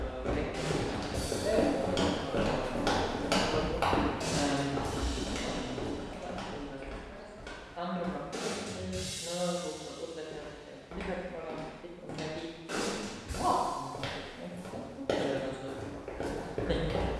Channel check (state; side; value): identical; both; correlation 1.00